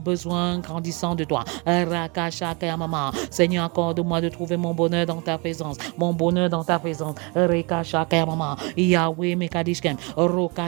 grandissant de toi. Rakashaka Mama, Seigneur, accorde-moi de trouver mon bonheur dans ta présence. Rekashaka Mama, Yahweh Mekadishkem,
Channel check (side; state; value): left; quieter; 30.1 dB